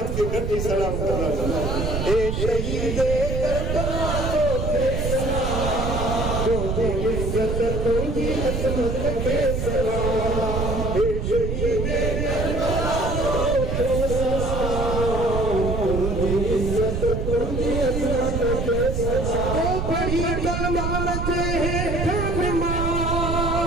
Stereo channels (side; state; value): right; noise; rumble, 1 dB below the sound